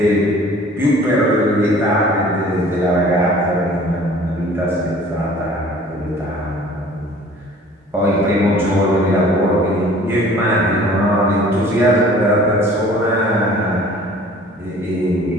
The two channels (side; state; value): both; normal; correlation 0.50